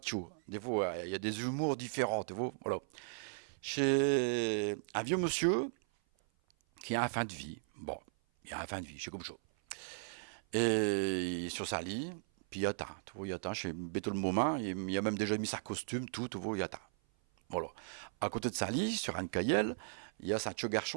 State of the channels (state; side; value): silent; left; 53 dB below the other